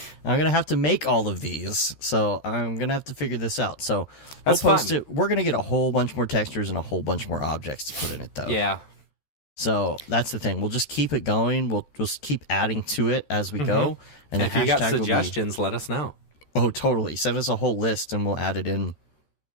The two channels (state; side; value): late; right; 13 ms